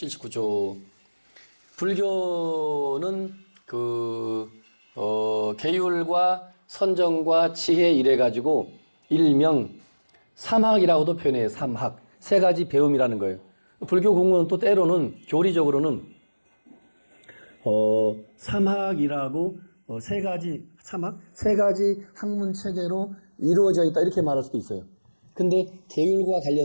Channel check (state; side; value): inverted; both; correlation -1.00